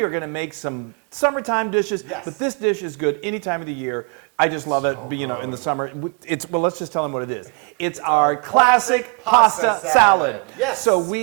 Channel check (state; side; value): quieter; left; 33.7 dB